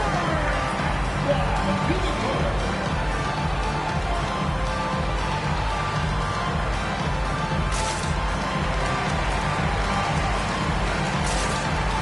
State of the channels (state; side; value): identical; both; correlation 1.00